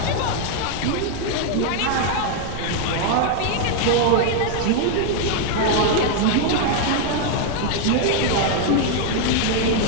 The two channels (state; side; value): different; both; correlation 0.00